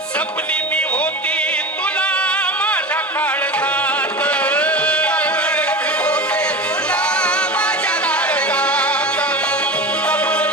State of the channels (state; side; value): normal; both; correlation 0.28